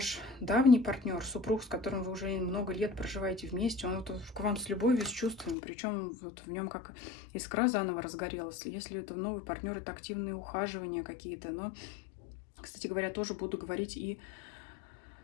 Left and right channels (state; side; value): drops out; right; at 5.6 s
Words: давний партнер, супруг, с которым вы уже много лет проживаете вместе, он вот к вам с любовью, с чувствами, причем вот в нем как искра заново разгорелась. Если это новый партнер, это активные ухаживания какие-то. Но, кстати говоря, тоже буду говорить и